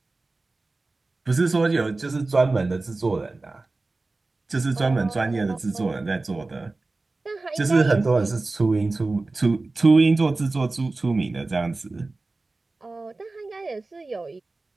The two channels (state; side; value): quieter; left; 3.3 dB